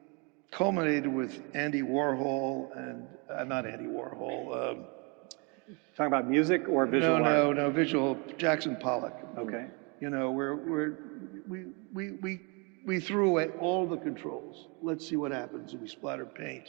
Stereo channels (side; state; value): left; quieter; 32.1 dB